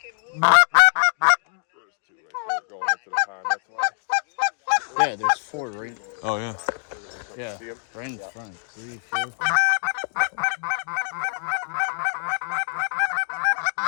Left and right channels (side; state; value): right; silent; digital silence